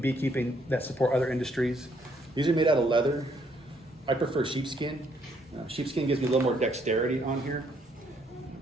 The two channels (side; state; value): both; normal; correlation 0.69